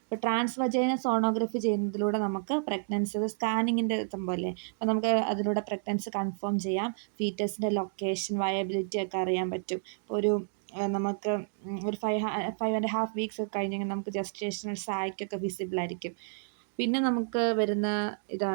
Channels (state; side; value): silent; left; digital silence